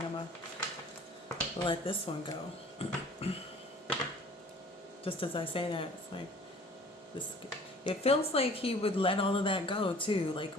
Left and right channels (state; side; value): normal; both; correlation 0.50